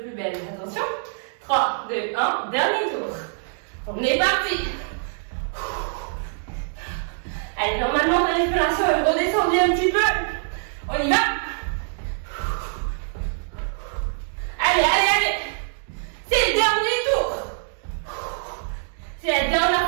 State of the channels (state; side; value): silent; left; digital silence